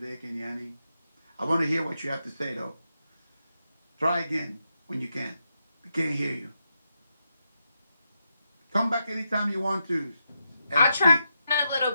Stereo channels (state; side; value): inverted; both; correlation -0.85